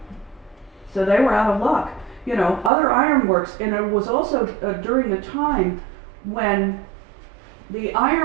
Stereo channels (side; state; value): left; drops out; at 2.7 s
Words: So they were out of luck. You know, other ironworks, and it was also during the time when the